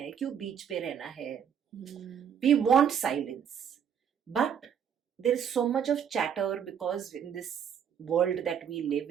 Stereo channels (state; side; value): quieter; left; 8.2 dB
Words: क्यों बीच पे रहना है। We want silence but there is so much of chatter because in this world that we